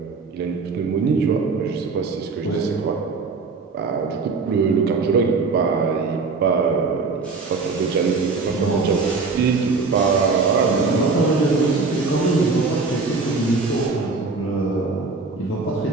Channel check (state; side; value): quieter; left; 4.2 dB